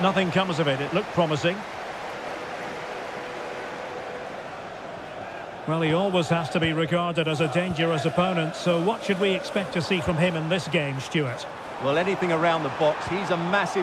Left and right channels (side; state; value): both; identical; correlation 1.00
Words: nothing comes of it. It looked promising. Well, he always has to be regarded as a dangerous opponent, so what should we expect to see from him in this game, Stuart? Well, anything around the box. He's a